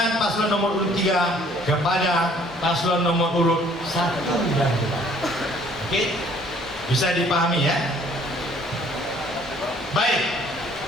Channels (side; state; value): both; normal; correlation 0.58